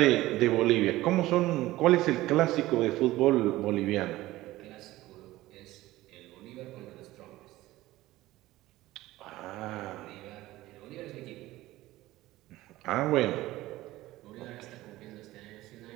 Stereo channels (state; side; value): quieter; left; 17.1 dB